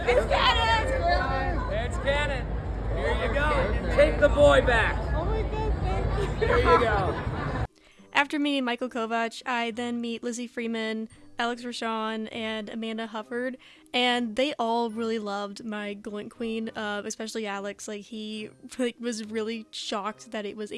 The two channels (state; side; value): identical; both; correlation 1.00